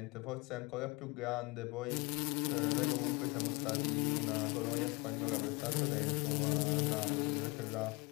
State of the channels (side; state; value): right; quieter; 25.8 dB